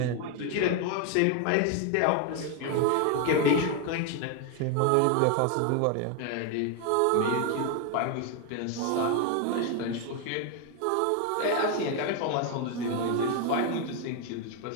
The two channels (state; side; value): different; both; correlation 0.01